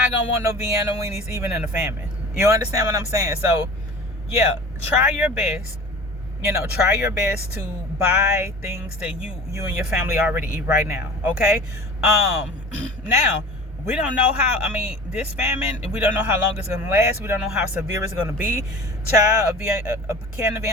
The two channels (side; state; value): both; normal; correlation 0.39